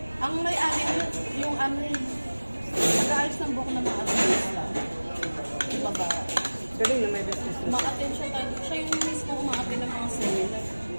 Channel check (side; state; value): both; inverted; correlation -1.00